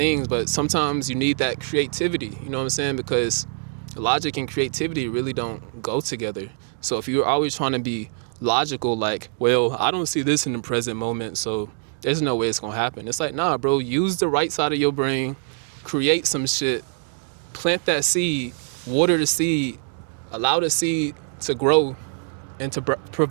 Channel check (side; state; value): left; silent; 59 dB below the other